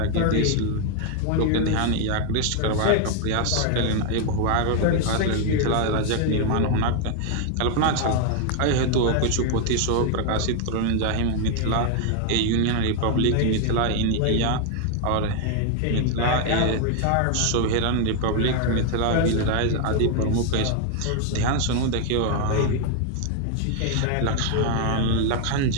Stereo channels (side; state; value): both; different; correlation 0.00